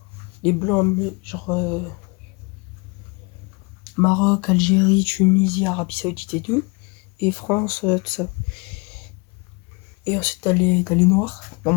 Les blancs, genre Maroc, Algérie, Tunisie, Arabie Saoudite et tout. Et France, tout ça. Et ensuite, t'as les noirs, dans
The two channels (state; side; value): quieter; right; 29.8 dB